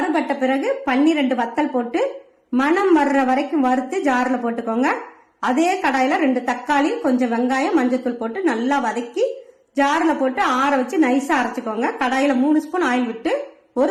பிறகு 12 வத்தல் போட்டு மணம் வர்ற வரைக்கும் வறுத்து ஜார்ல போட்டுக்கோங்க. அதே கடாயில 2 தக்காளி, கொஞ்சம் வெங்காயம், மஞ்சத்தூள் போட்டு நல்லா வதக்கி ஜார்ல போட்டு ஆற வச்சு நைஸா அரைச்சுக்கோங்க. கடாயில 3 ஸ்பூன் ஆயில் விட்டு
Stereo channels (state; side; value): identical; both; correlation 1.00